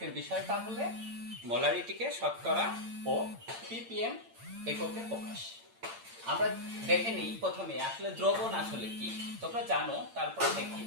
বিষয়টা হলে মোলারিটিকে শতকরা ও ppm এককে প্রকাশ। আমরা দেখে নিই প্রথমে আসলে দ্রবণ আসলে কি। তোমরা জানো, তারপরে দেখি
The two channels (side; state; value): left; late; 8.8 ms